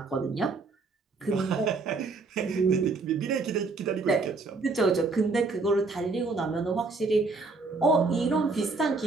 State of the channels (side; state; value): left; quieter; 3.9 dB